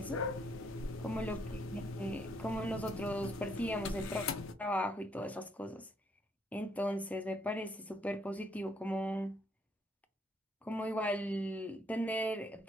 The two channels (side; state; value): both; normal; correlation 0.71